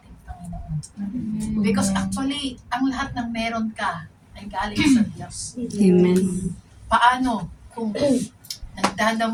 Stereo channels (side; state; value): both; identical; correlation 1.00